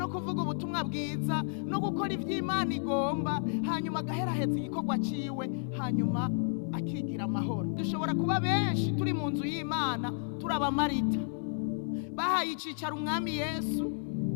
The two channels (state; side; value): silent; right; digital silence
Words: kuvuga ubutumwa bwiza no gukora ivy'Imana igomba, hanyuma agaheraheza igikorwa ciwe, hanyuma akigira amahoro. Dushobora kuba benshi turi mu nzu y'Imana turaba Marita bahaye icicaro umwami Yesu